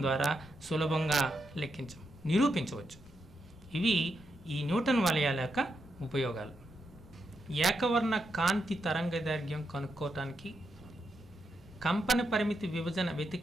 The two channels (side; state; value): both; normal; correlation 0.83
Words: ద్వారా సులభంగా నిరూపించవచ్చు. ఇవి ఈ న్యూటన్ వలయాల యొక్క ఉపయోగాలు. ఏకవర్ణ కాంతి తరంగదైర్ఘ్యం కనుక్కోవటానికి, కంపన పరిమితి విభజన